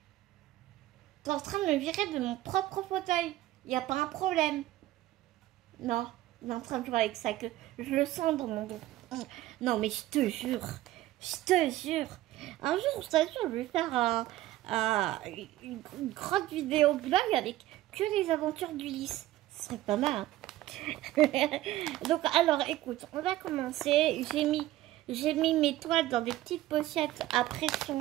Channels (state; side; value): quieter; left; 15.5 dB